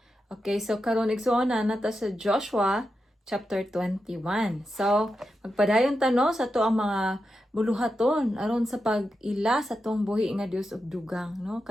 Okay, so karon igsuon na nata sa Joshua chapter 21. So magpadayon tano sa to ang mga buluhaton aron sa pag-ila sa tong buhi nga Dios og dugang, no?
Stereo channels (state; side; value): normal; both; correlation 0.88